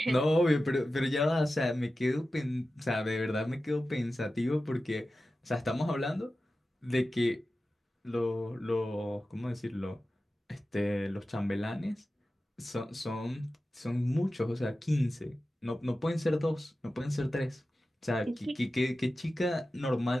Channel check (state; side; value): normal; both; correlation 0.94